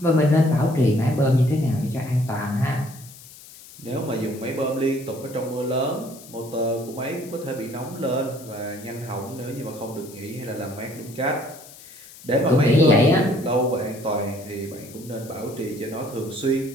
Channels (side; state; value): left; noise; hiss, 19 dB below the sound